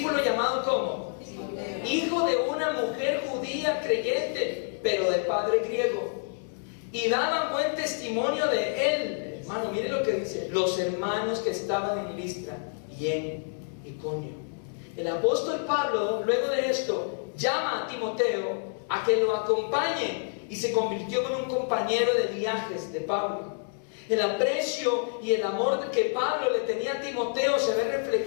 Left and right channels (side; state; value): right; silent; 59 dB below the other